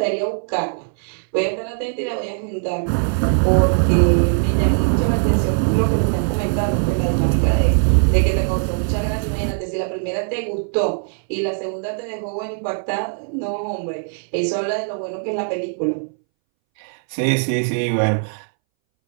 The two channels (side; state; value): left; silent; 64 dB below the other